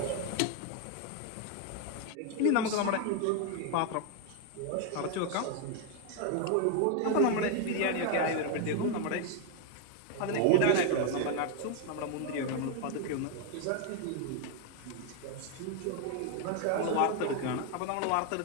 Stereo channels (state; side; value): different; both; correlation 0.01